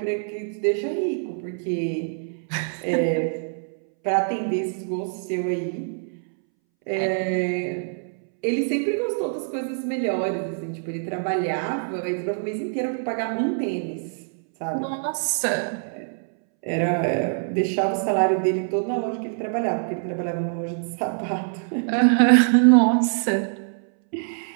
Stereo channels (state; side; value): silent; left; 62 dB below the other